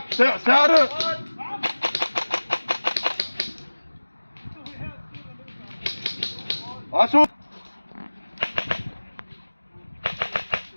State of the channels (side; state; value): both; inverted; correlation -1.00